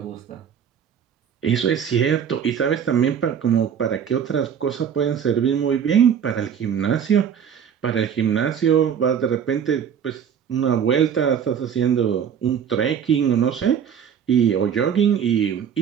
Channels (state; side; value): quieter; left; 8.1 dB